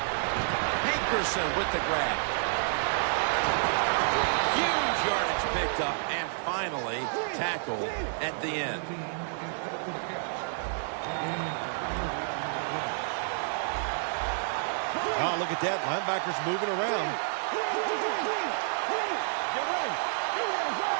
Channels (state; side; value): silent; left; 58 dB below the other